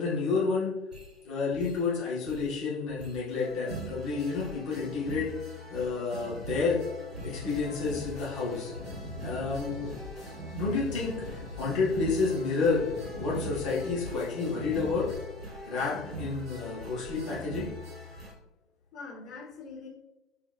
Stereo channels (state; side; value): quieter; right; 3.7 dB